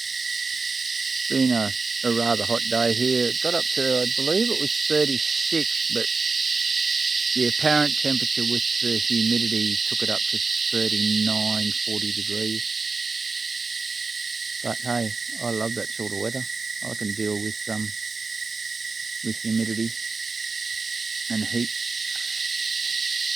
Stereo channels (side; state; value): left; quieter; 4.2 dB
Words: Been a rather hot day here. It got up to, I believe it was 36, but the apparent temperature with the humidity took it up to 39, 40 degrees. But hey, I love that sort of weather. I can deal with humidity and heat.